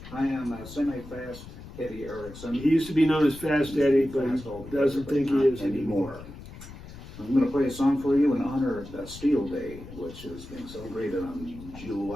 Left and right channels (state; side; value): noise; left; rumble, 15 dB below the sound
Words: I am a semi-fast Eddie Erickson. He used to be known as Fast Eddie, but he doesn't think he is anymore. I'm going to play a song for you in honor of Bastille Day, which is being celebrated on